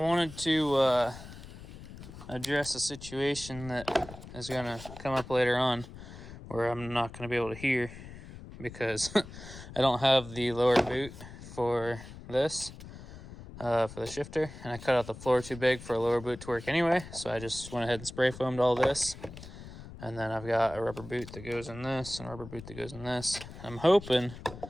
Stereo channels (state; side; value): noise; left; rumble, 14 dB below the sound